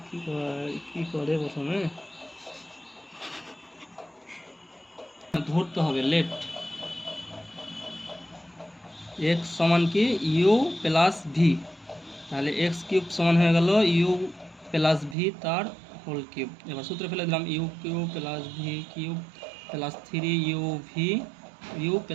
কি করে প্রথমে ধরতে হবে লেফট এক্স সমান কি ইউ প্লাস ভি, তাহলে এক্স কিউব সমান হয়ে গেল ইউ প্লাস ভি তার হোল কিউব। এবার সূত্রে ফেলে দিলাম u cube plus V cube plus 3 u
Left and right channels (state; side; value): drops out; left; at 15.2 s